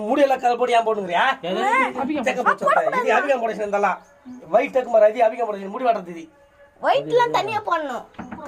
முடியெல்லாம் கதை போட்டு ஏன் போட்டுங்கிறியா? அபிகம் போட இருந்தாலும் ஒயிட் டக்கு அபிகம் போட முடி வாடுறது ஒயிட்லாம் தனியா போடணும்,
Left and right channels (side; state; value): both; identical; correlation 1.00